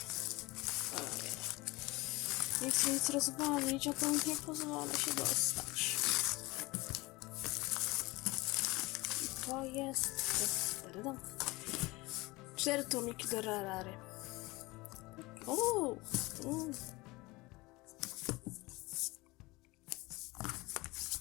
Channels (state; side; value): quieter; right; 22.3 dB